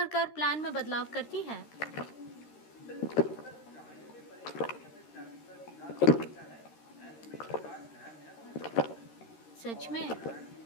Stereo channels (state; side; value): late; right; 13 ms